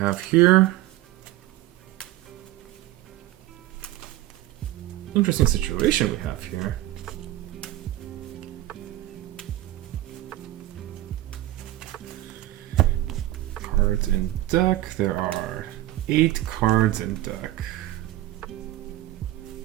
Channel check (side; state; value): left; quieter; 15.3 dB